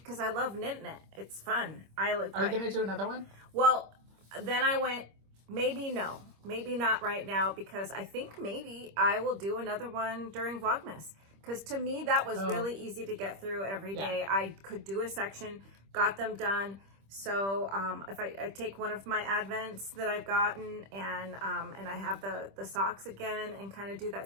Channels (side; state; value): left; late; 25 ms